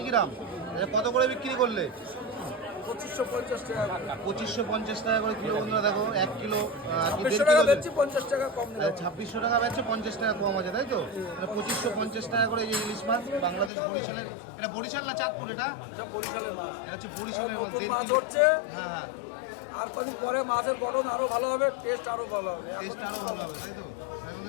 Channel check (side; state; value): right; drops out; at 13.7 s